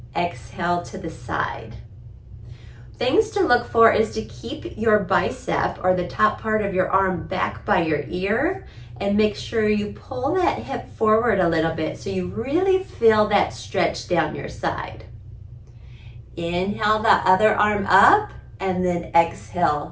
exhale to the side. Things to look for is to keep your bicep or the top part of your arm back by your ear and make sure you pull that hip forward a little bit so you really feel that stretch down your side. Inhale the other arm up and then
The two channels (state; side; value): identical; both; correlation 1.00